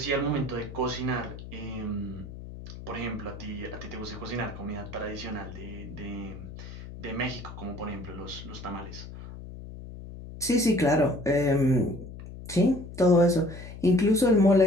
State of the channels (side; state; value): left; noise; hum, 12 dB below the sound